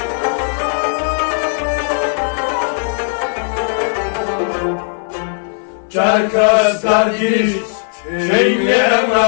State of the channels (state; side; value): silent; right; 69 dB below the other